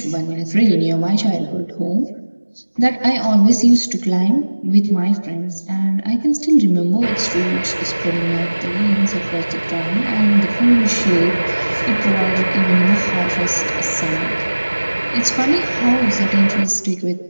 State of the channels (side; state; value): both; inverted; correlation -1.00